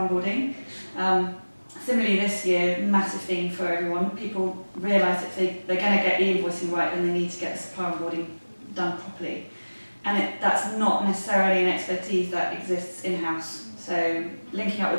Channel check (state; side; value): inverted; both; correlation -1.00